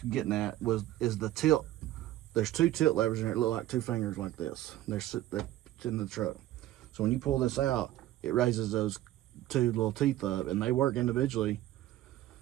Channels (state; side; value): quieter; left; 14.4 dB